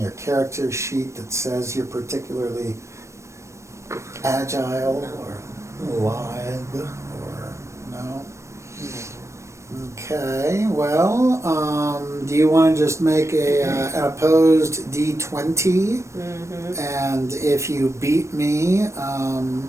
character sheet that says you're particularly agile or lithe or no? Okay, well, do you want to just make an opposed D20? Mm-hmm. And if you beat me,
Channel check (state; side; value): late; left; 0.14 ms